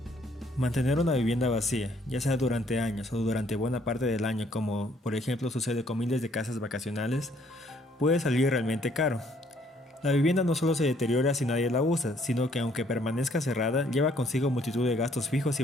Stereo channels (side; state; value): both; normal; correlation 0.65